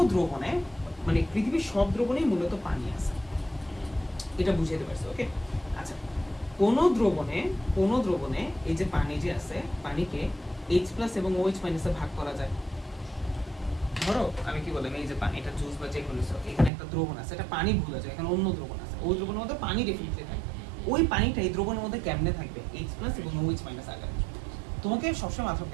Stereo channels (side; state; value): left; drops out; at 16.7 s